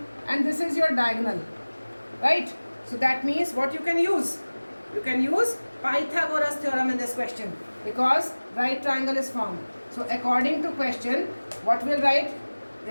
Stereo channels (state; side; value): inverted; both; correlation -1.00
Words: and this is your diagonal, right? So that means what you can use? You can use Pythagoras theorem in this question because right triangle is formed. So according to question, what will write?